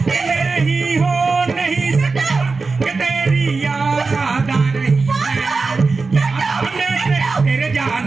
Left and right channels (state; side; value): quieter; left; 4.1 dB